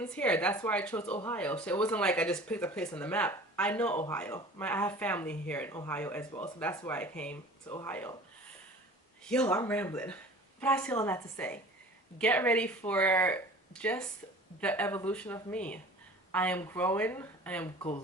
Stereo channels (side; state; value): both; normal; correlation 0.43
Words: here. That's why I chose Ohio. So it wasn't like I just picked a place on the map. I know Ohio. I have family here in Ohio as well. So that's why I came to Ohio. Yo, I'm rambling. But I say all that to say, get ready for just the evolution of me. I am growing. I am